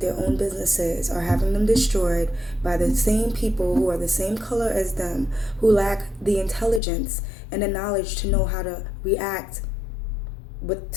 their own businesses are having them destroyed by the same people who are the same color as them, who lack the intelligence and the knowledge to know how to react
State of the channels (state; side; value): drops out; right; at 6.8 s